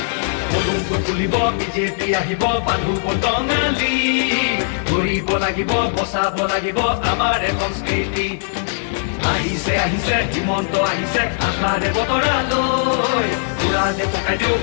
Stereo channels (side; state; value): right; silent; digital silence